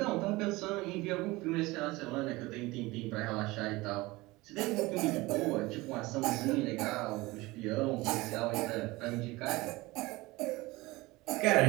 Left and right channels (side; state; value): left; quieter; 21.2 dB